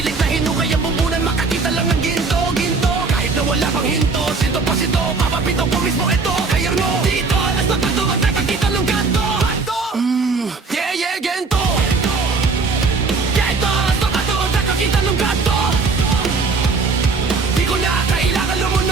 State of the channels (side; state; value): left; quieter; 4.3 dB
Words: na hinukay ang bumbunan. Makakita lang ng ginto. Kahit na wala pang hinto. Sinto pa sito, papapito ko mismo ito. Kaya mo, dito, alas na pato. Ang nakakita ng ganto. Yeah, gento. Kita ng gato. Di ko na kailangan